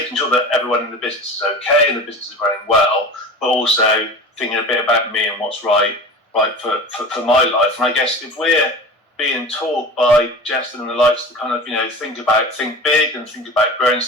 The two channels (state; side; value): normal; both; correlation 0.34